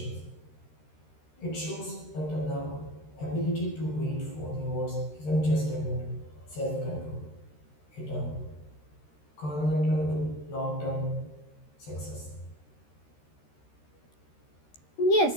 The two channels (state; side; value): late; right; 13 ms